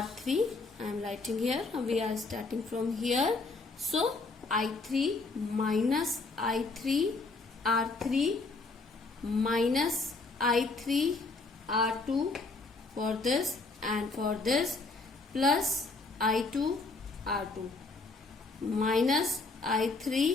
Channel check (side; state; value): right; quieter; 3.6 dB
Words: I am writing here. We are starting from here. So I3 minus I3 R3 minus I3 R2 for this and for this plus I2 R2 minus